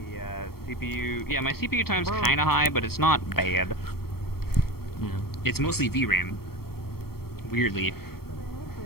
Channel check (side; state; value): right; late; 0.94 ms